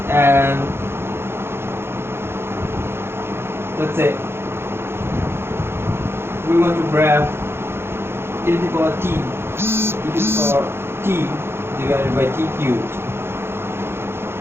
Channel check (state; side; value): late; left; 0.12 ms